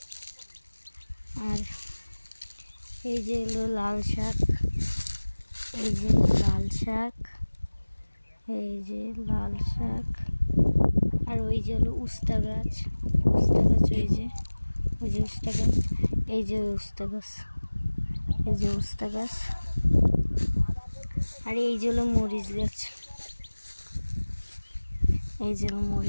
আর এই যে হলো লাল শাক, এই যে লাল শাক, এই যে লাল শাক। আর ওই যে হলো উস্তা গাছ, ওই যে উস্তা গাছ, এই যে উস্তা গাছ, এই যে উস্তা গাছ। আর এই যে হলো মরিচ গাছ, এই যে হলো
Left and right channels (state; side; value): inverted; both; correlation -1.00